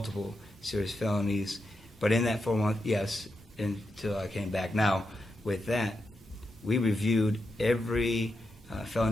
serious felonies, but in that 4 months, yes, until I came back. Now, with that, we reviewed every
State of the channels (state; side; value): normal; both; correlation 0.86